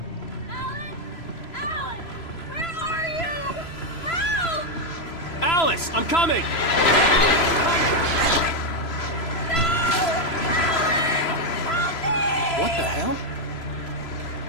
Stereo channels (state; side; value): late; right; 3.0 ms